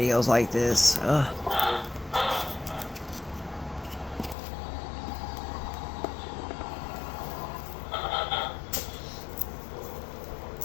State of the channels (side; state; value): right; drops out; at 4.4 s